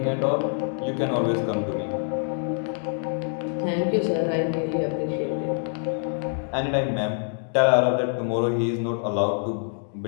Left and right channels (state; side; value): silent; right; digital silence